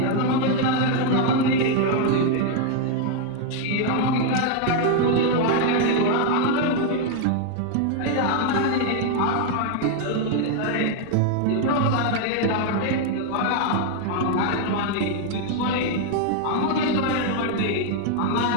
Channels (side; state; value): both; different; correlation 0.00